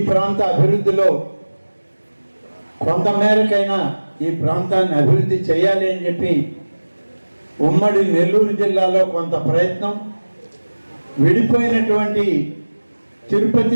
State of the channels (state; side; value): inverted; both; correlation -1.00